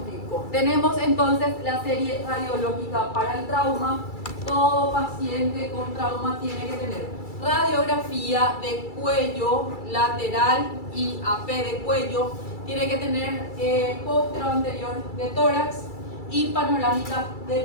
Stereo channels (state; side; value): late; right; 2.3 ms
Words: Tenemos entonces la serie radiológica para el trauma. Todo paciente con trauma tiene que tener radiografía de cuello lateral y AP de cuello. Tiene que tener póstero anterior de tórax y panorámica de